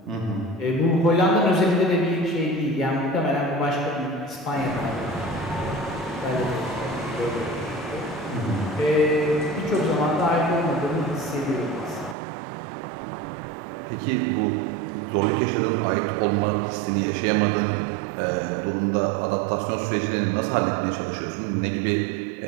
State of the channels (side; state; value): left; drops out; at 12.2 s